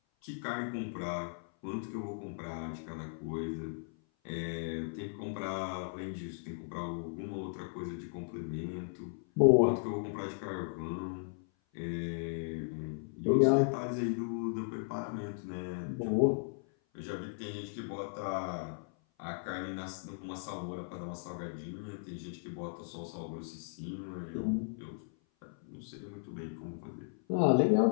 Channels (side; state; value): right; silent; 54 dB below the other